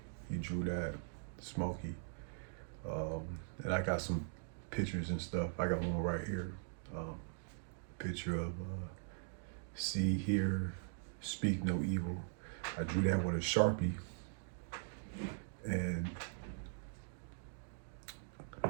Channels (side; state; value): left; silent; digital silence